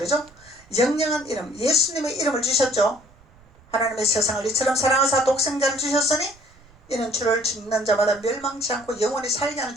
영영한 이름, 예수님의 이름을 주셨죠. 하나님의 세상을 이처럼 사랑하사 독생자를 주셨으니 이는 주를 믿는 자마다 멸망치 않고 영원히 살게 하는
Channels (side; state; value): right; noise; rumble, 27 dB below the sound